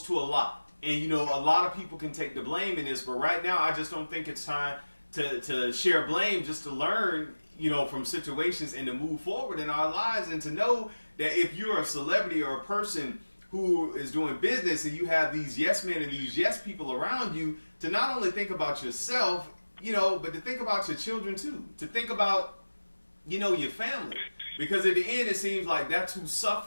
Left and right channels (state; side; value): inverted; both; correlation -1.00